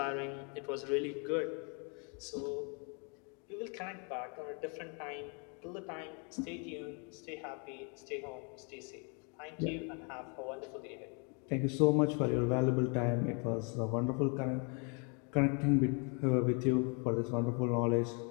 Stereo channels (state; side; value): quieter; right; 36.5 dB